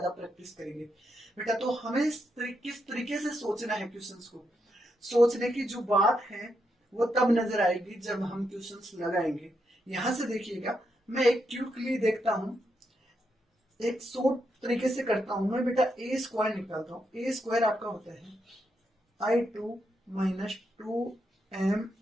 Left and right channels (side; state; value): both; normal; correlation 0.82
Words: प्रैक्टिस करेंगे बेटा। तो हमें किस तरीके से सोचना है क्वेश्चंस को, सोचने की जो बात है वो तब नजर आएगी जब हम क्वेश्चंस लगाएंगे। यहां से देखिएगा, मैं एक क्विकली देखता हूं, एक शॉर्ट तरीके से करता हूं मैं बेटा। ए स्क्वायर निकालता हूं। ए स्क्वायर आपका होता है I2 minus 2m